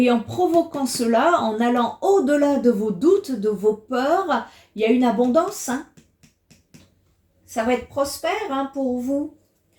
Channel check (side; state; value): both; identical; correlation 1.00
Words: en provoquant cela, en allant au-delà de vos doutes, de vos peurs, il y a une abondance, hein. Ça va être prospère hein, pour vous.